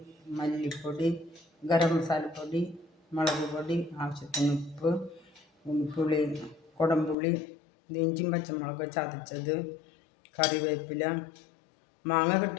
മല്ലിപ്പൊടി, ഗരം മസാലപ്പൊടി, മുളക് പൊടി, ആവശ്യത്തിന് ഉപ്പ്, പുളി, കുടംപുളി, ഇഞ്ചിയും പച്ചമുളക് ചതച്ചത്, കറിവേപ്പില, മാങ്ങ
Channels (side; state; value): right; drops out; at 7.2 s